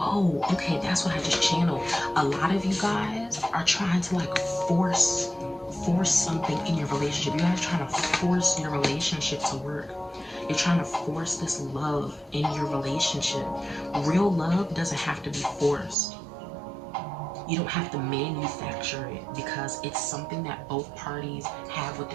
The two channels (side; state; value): left; drops out; at 16.0 s